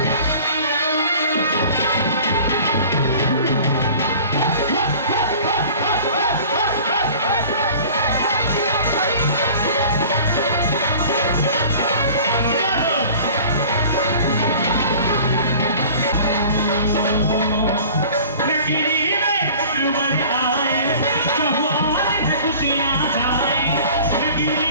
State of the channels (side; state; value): both; inverted; correlation -0.45